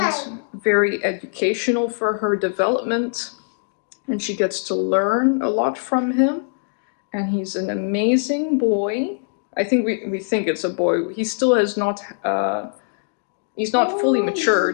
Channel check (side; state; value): right; silent; digital silence